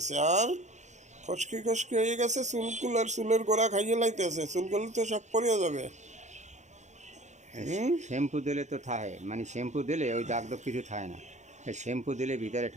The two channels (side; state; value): left; late; 0.34 ms